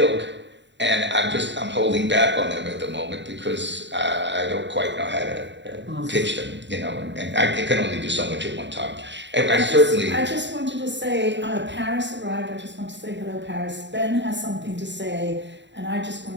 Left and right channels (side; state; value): left; late; 0.52 ms